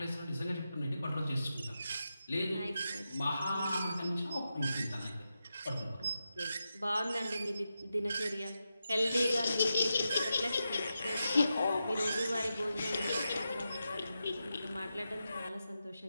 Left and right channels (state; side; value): inverted; both; correlation -0.88